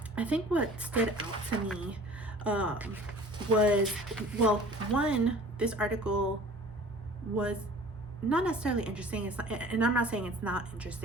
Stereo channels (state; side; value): normal; both; correlation 0.47